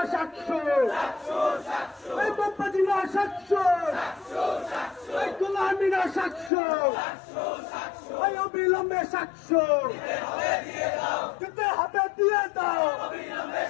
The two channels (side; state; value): right; drops out; at 6.5 s